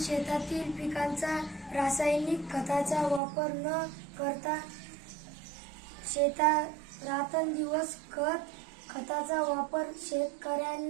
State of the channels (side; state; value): left; drops out; at 3.2 s